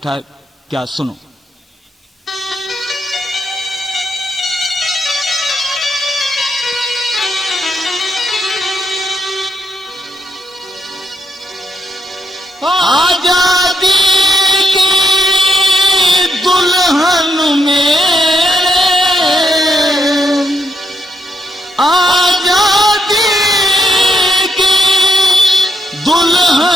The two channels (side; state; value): both; normal; correlation 0.78